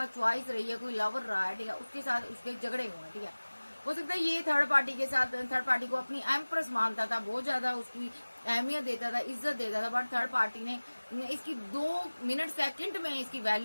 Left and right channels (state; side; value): inverted; both; correlation -1.00